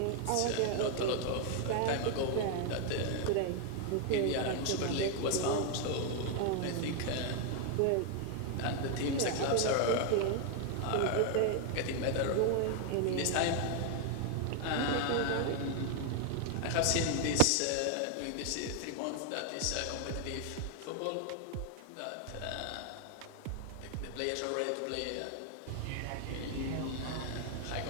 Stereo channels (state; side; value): different; both; correlation 0.00